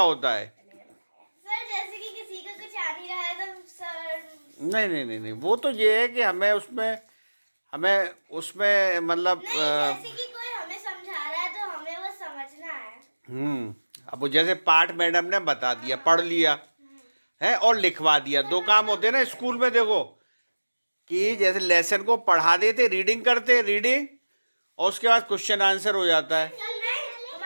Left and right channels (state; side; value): inverted; both; correlation -1.00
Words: है। सर जैसे कि किसी का कुछ आ नहीं रहा है तो सर नहीं वो तो ये है कि हमें उसमें मतलब जैसे कि कोई हमें समझा रहा है तो हमें वो समझना है। अब वो जैसे पाठ मैडम ने बता दिया, पढ़ लिया है और लिखवा दिया, 2 काम होते हैं ना स्कूल में। देखो कि जैसे लेसन को पढ़ा देते, रीडिंग करते, रीडिंग, और उसके बाद क्वेश्चन आंसर हो जाता है। तो